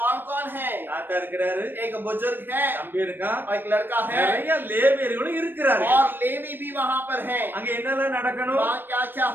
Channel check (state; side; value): late; left; 0.096 ms